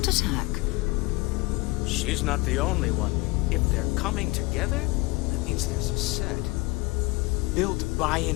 attack. She's not the only one. If they're coming together, that means there's a set. Built by an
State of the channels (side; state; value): right; quieter; 23.8 dB